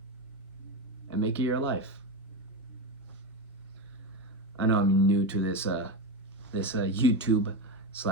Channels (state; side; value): normal; both; correlation 0.16